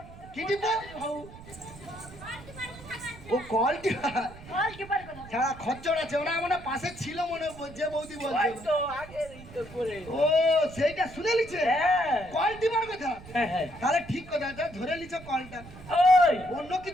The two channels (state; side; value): noise; right; rumble, 17 dB below the sound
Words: কি টিপো? হউ। ও কল টিপা। বল কি পারে কথা? যারা খচ্চর আছে ওরা মনে হয় পাশে ছিল মনে হয়, যে বৌদি ওই বলছে। তো আগের এই তো করে। ও সেইটা শুনে লিছে হ্যাঁ কল টিপার কথা। হ্যাঁ হ্যাঁ। তাহলে ঠিক কথা, যা ধরে লিছো কলটা। ওই অন্য